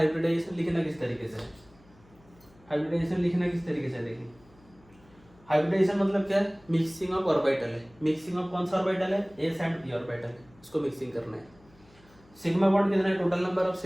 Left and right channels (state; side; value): noise; left; hum, 28 dB below the sound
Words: लिखना किस तरीके से है। हाइब्रिडाइजेशन लिखना किस तरीके से है, देखिए। हाइब्रिडाइजेशन मतलब क्या है? मिक्सिंग ऑफ ऑर्बिटल है। मिक्सिंग ऑफ कौन सा ऑर्बिटल है? s एंड p ऑर्बिटल है, इसको मिक्सिंग करना है। सिग्मा बॉन्ड कितना है? Total number of